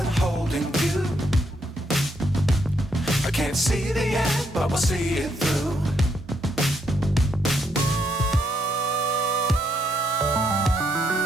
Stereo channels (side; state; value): both; normal; correlation 0.75